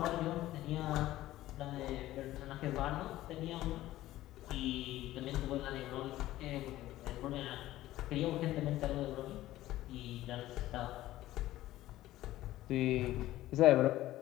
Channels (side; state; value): right; quieter; 15.2 dB